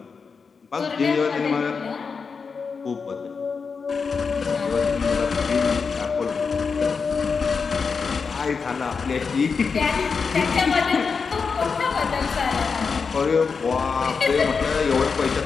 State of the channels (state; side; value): quieter; right; 5.3 dB